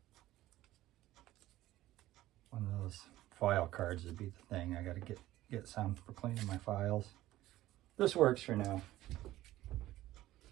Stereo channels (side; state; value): left; quieter; 15.4 dB